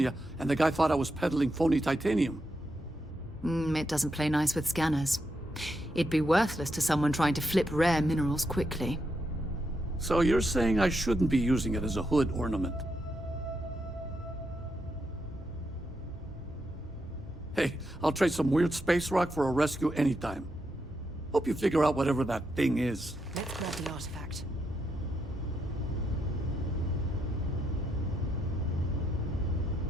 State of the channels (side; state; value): both; normal; correlation 0.82